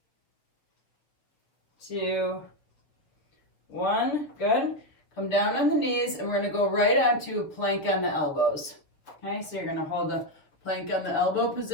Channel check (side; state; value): right; late; 6.5 ms